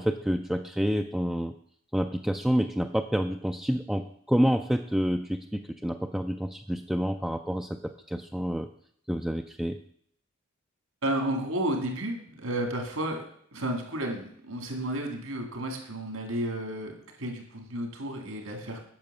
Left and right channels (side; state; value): both; normal; correlation 0.78